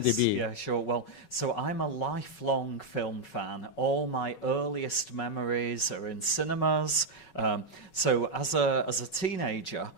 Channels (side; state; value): right; late; 5.4 ms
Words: Yeah, sure. Well, so I'm a lifelong film fan. All my earliest memories are in cinemas. So as a teenager,